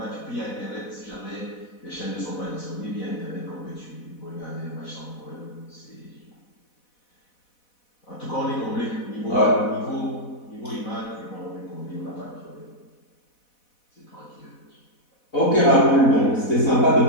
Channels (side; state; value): right; late; 4.1 ms